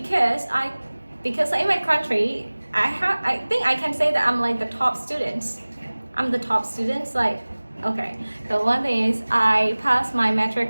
in my country, I think I can say that I'm like the top students I'm the top student. Like, okay, the one thing is I passed my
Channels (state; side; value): inverted; both; correlation -1.00